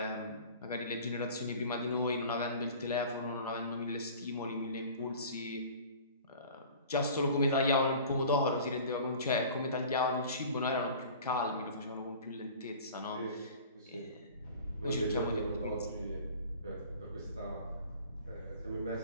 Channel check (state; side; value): inverted; both; correlation -0.43